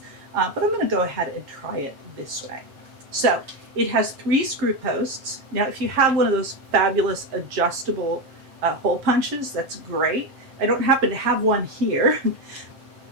but I'm going to go ahead and try it this way. So it has 3 screw posts. Now, if you have one of those fabulous adjustable hole punches, that's great. I don't happen to have one here.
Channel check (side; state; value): left; late; 7.2 ms